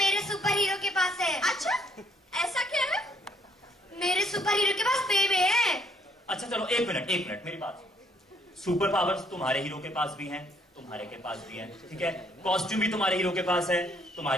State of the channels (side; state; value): both; normal; correlation 0.66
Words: सुपर हीरो के पास है। अच्छा ऐसा क्या है? मेरे सुपर हीरो के पास बेबे है। अच्छा चलो एक मिनट मेरी बात। सुपर पावर्स तुम्हारे हीरो के पास भी हैं, तुम्हारे के पास भी हैं, ठीक है। कॉस्ट्यूम भी तुम्हारे हीरो के पास है,